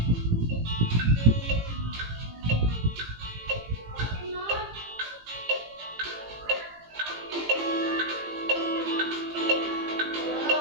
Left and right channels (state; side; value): late; left; 18 ms